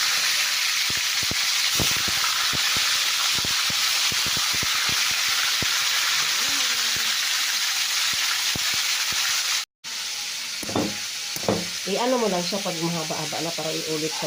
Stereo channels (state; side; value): identical; both; correlation 1.00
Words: I-ano mo lang siya pag mahaba-haba na para iulit sa